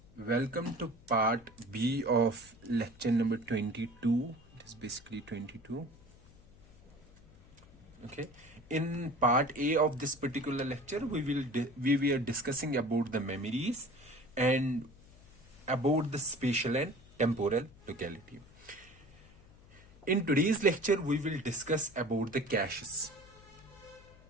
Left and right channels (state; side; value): noise; left; hum, 24 dB below the sound